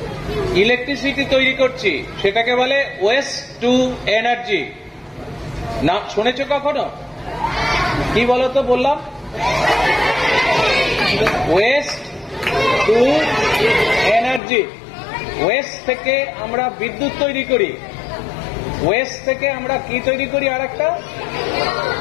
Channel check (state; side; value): drops out; right; at 14.4 s